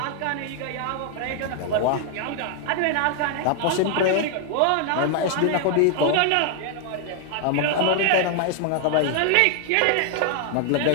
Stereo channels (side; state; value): both; different; correlation 0.00